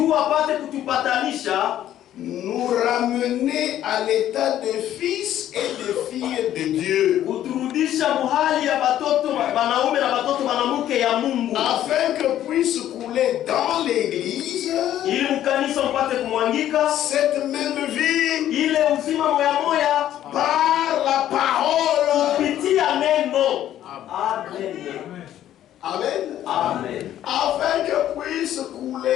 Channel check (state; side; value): quieter; right; 11.9 dB